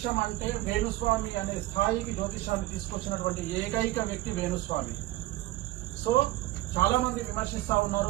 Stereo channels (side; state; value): left; quieter; 16.9 dB